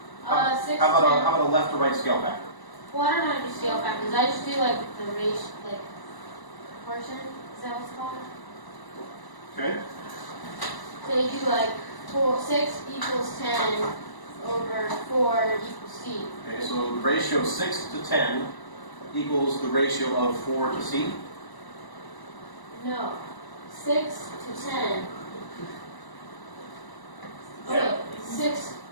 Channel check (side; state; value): right; late; 1.0 ms